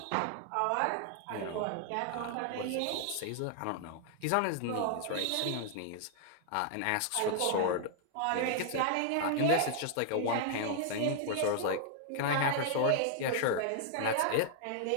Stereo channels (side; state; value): both; different; correlation 0.00